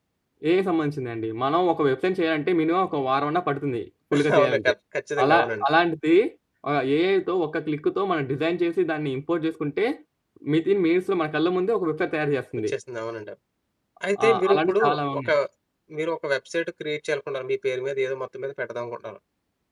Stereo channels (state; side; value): identical; both; correlation 1.00